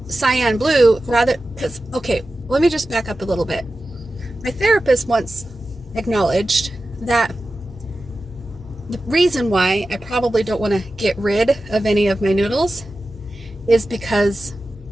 cyan blue, let me just back up a little bit. My therapist once acknowledged that the reason why I probably don't want to get rid of any of my noodles is because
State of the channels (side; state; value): both; normal; correlation 0.94